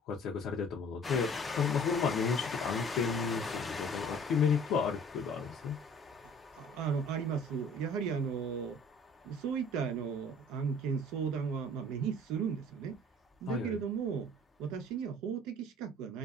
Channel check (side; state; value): both; normal; correlation 0.50